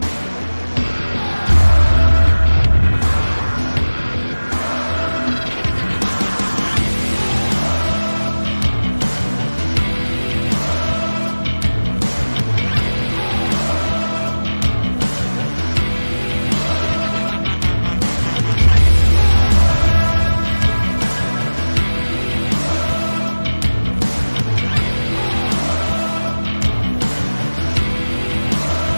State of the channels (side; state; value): both; inverted; correlation -1.00